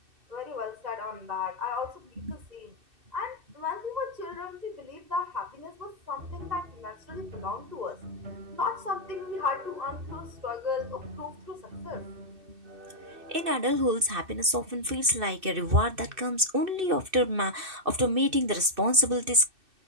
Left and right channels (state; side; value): late; left; 2.6 ms